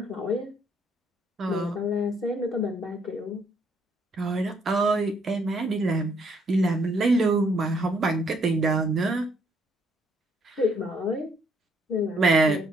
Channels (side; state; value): both; normal; correlation 0.68